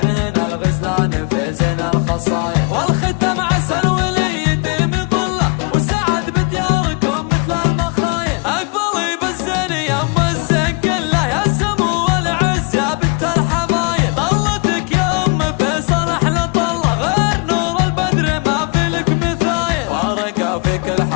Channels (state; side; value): quieter; right; 32.7 dB